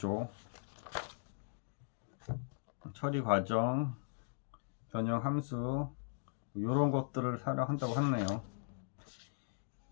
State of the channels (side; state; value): right; silent; digital silence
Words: 처리 과정, 변형 함수, 이런 것들을 사용한다고 하네요.